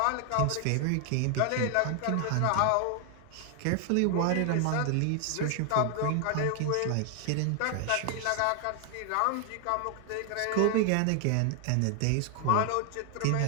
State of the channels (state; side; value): different; both; correlation 0.00